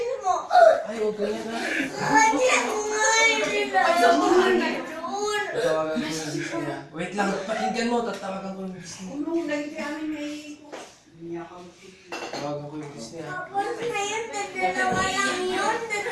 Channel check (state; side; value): identical; both; correlation 1.00